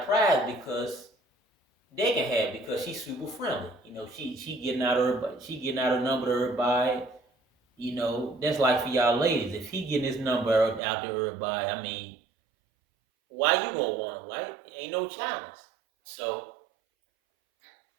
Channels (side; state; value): left; drops out; at 10.8 s